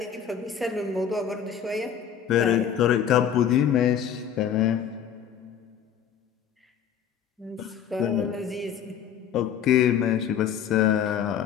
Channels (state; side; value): quieter; right; 8.6 dB